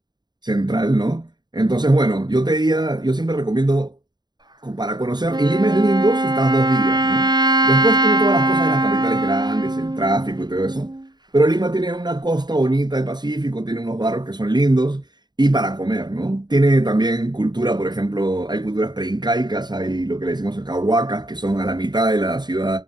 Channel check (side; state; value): left; late; 0.21 ms